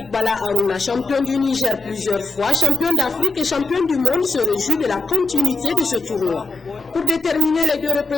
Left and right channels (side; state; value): both; normal; correlation 0.72